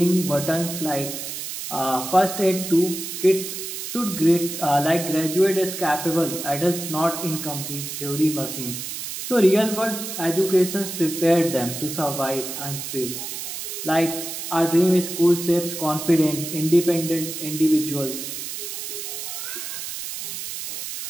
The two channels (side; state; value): right; noise; hiss, 7 dB below the sound